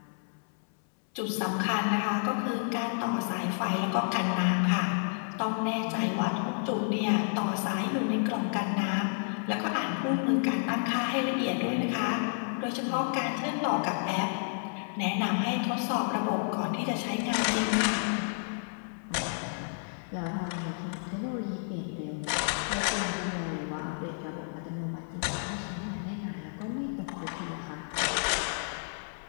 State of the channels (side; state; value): right; silent; 57 dB below the other